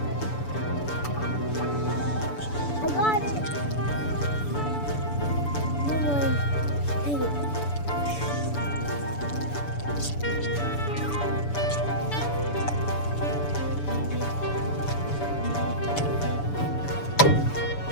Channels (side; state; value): right; late; 6.9 ms